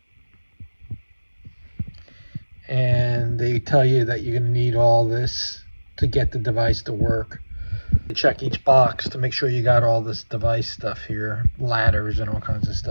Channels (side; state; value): both; inverted; correlation -1.00